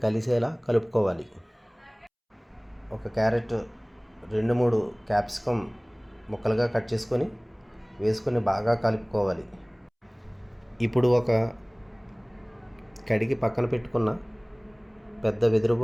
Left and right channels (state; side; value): identical; both; correlation 1.00